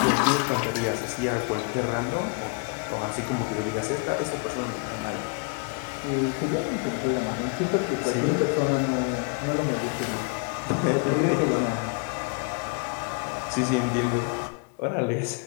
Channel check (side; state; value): right; quieter; 35.0 dB